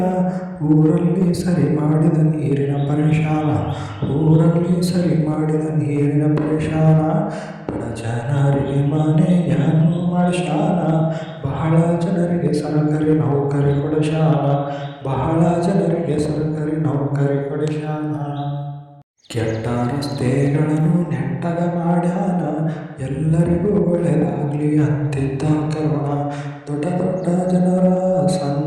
ಊರಲ್ಲಿ ಸರಿ ಮಾಡಿದ ನೀರಿನ ಪರೇಶಾನ ಊರಲ್ಲಿ ಸರಿ ಮಾಡಿದ ನೀರಿನ ಪರೇಶಾನ ಬಡ ಜನರಿಗೆ ಮನೆಯನ್ನು ಮಾಡಿಸ್ಯಾನ ಬಹಳ ಜನರಿಗೆ ಸರ್ಕಾರಿ ನೌಕರಿ ಕೊಡಿಸ್ಯಾನ ಬಹಳ ಜನರಿಗೆ ಸರ್ಕಾರಿ ನೌಕರಿ ಕೊಡಿಸ್ಯಾನ ಕೆಟ್ಟ ರಸ್ತೆಗಳನ್ನು ನೆಟ್ಟಗ ಮಾಡ್ಯಾನ ಎಲ್ಲರಿಗೂ ಒಳ್ಳೆಯದಾಗಲಿ ಅಂತಿದ್ದ ಕರುಣ ದೊಡ್ಡ ದೊಡ್ಡ ಜನರ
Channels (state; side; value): identical; both; correlation 1.00